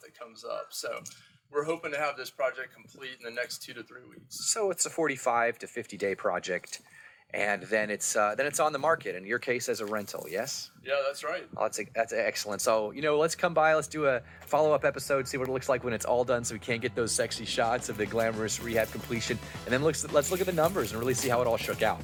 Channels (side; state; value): both; identical; correlation 1.00